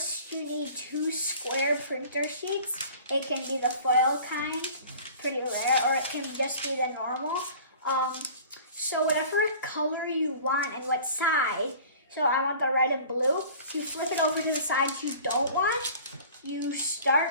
you need 2 square printer sheets. It can be the foil kind, pretty rare, or it can just be the normal. So whatever color you want and what side. So I want the red and blue. You flip it over to the sides you don't want. You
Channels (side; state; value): both; inverted; correlation -0.45